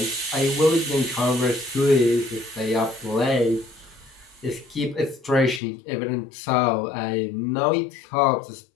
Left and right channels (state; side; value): drops out; right; at 5.6 s